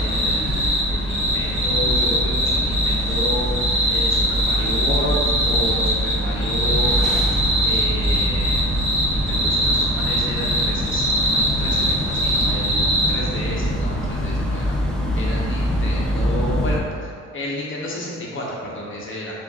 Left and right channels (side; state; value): both; normal; correlation 0.36